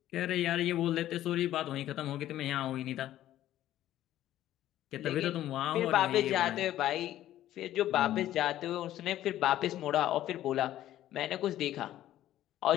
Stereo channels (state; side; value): quieter; right; 13.1 dB